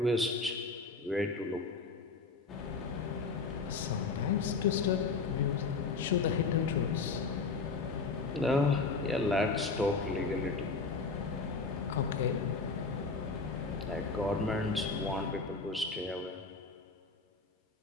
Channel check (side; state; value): right; quieter; 4.2 dB